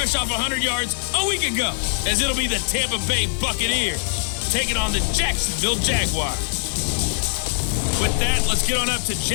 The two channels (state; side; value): silent; right; digital silence